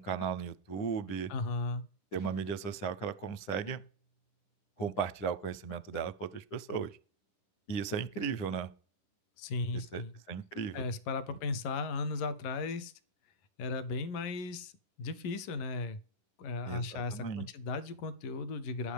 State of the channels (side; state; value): right; late; 11 ms